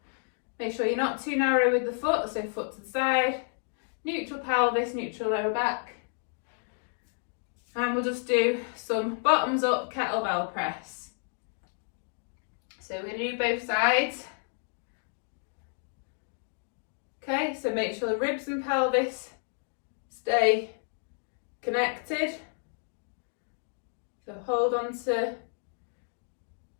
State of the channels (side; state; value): right; silent; 57 dB below the other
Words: Make sure you're not too narrow with the foot, so foot to the side. Neutral pelvis, neutral lower back. And we'll just do some bottoms up kettlebell press. So we're going to do both sides. Okay, so make sure the ribs and pelvis stay connected. So hold on to